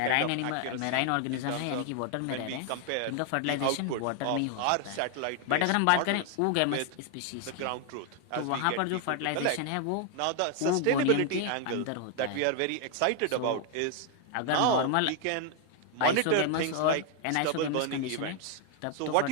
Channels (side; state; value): both; different; correlation 0.00